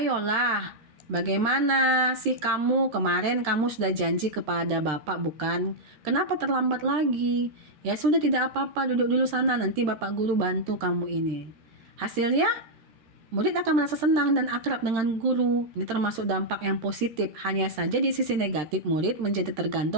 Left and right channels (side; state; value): left; late; 13 ms